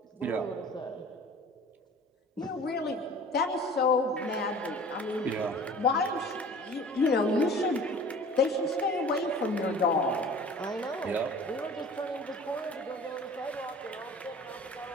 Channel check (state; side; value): normal; both; correlation 0.44